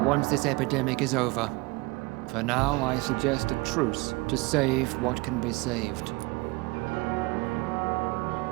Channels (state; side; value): quieter; left; 24.4 dB